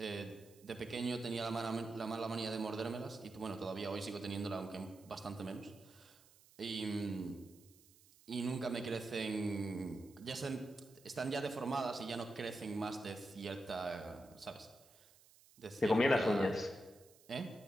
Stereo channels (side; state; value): right; noise; hiss, 26 dB below the sound